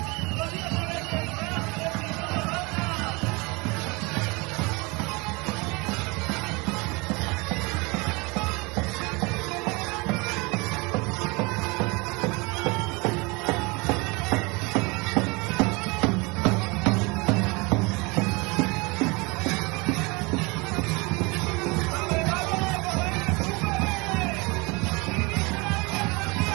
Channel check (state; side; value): quieter; left; 26.9 dB